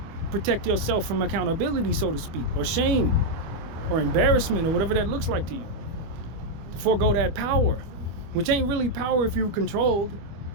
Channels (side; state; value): left; late; 25 ms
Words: Protect yourself from accountability, so to speak, or shame, or embarrassment, or whatever that looks like to you. To forego that power, which ain't really power if you're controlled.